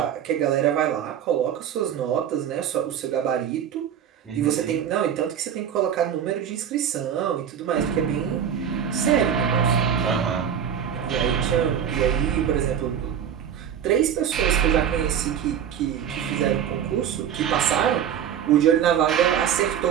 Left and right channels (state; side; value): quieter; left; 8.8 dB